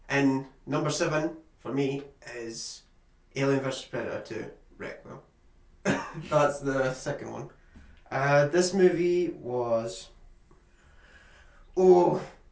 And number 7 for me is Alien vs Predator 2 Requiem. That's the second one. This movie was... Oh,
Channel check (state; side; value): identical; both; correlation 1.00